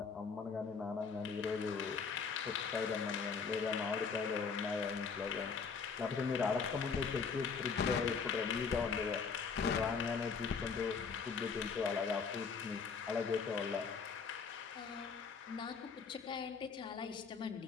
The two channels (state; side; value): quieter; right; 5.6 dB